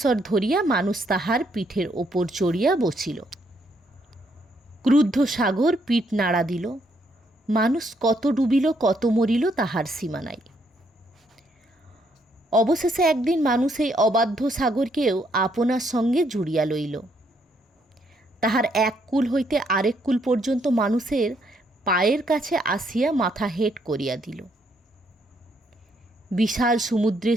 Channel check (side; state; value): both; normal; correlation 0.72